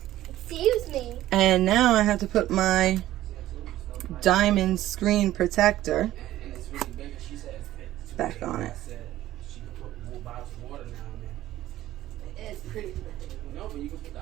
Excuse me. And now I have to put my diamond screen protector And it's really big. And she said it fits. back on it. Said she could put more bottles of water now and then. It's pretty big. No, but you can put the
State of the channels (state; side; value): quieter; left; 14.3 dB